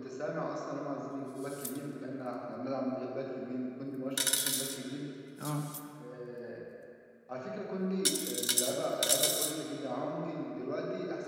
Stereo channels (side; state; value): both; identical; correlation 1.00